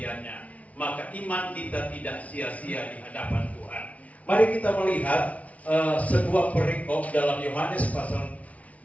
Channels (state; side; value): late; right; 0.067 ms